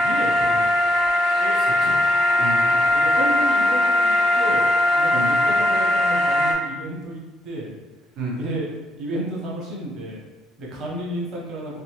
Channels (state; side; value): normal; both; correlation 0.79